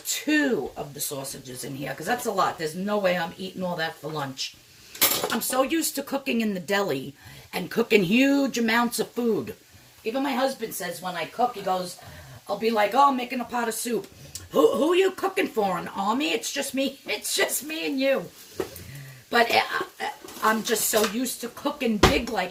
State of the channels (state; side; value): identical; both; correlation 1.00